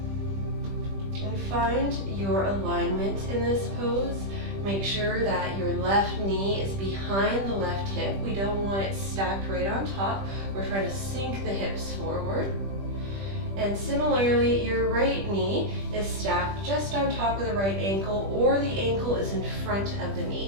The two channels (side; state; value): left; late; 20 ms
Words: And find your alignment in this pose. Make sure that your left knee is behind the left hip. We don't want it stacked right on top. We're trying to sink the hips forward. And similarly, your right knee is stacked just on top of the right ankle, or the ankle is in front of the